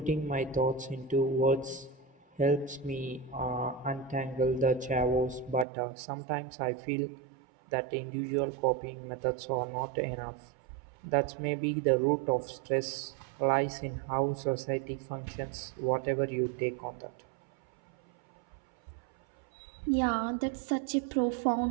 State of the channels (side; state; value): left; drops out; at 5.7 s